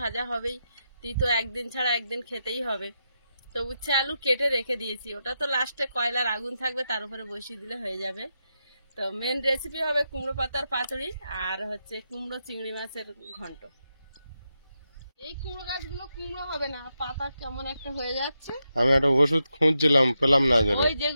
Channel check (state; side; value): inverted; both; correlation -0.86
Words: ভাজা হবেই, তো একদিন ছাড়া একদিন খেতেই হবে। তো উচ্ছে আলু কেটে রেখে দিয়েছি, ওটা তো লাস্টে কয়লার আগুন থাকবে তার উপরে বসিয়ে দিলে হয়ে যাবে। তো মেন রেসিপি হবে কুমড়ো পাতার পাতুড়ি আর হচ্ছে কুমড়ো চিংড়ি মাছের ঘন্ট। এই কুমড়ো গাছগুলো কুমড়ো হবে না, পাতা কেমন একটা হয়ে যাচ্ছে। আমি একটা ওষুধ খুঁজছিলাম, পেলাম না। ওই